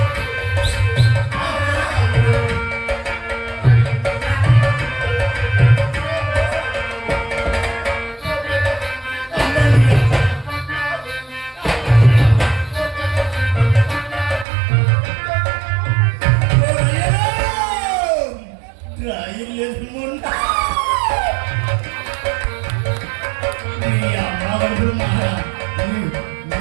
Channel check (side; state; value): left; drops out; at 14.5 s